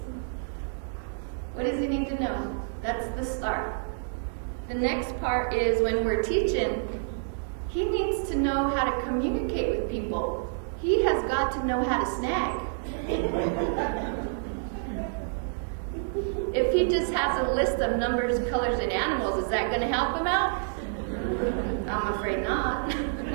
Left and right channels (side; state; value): left; silent; 59 dB below the other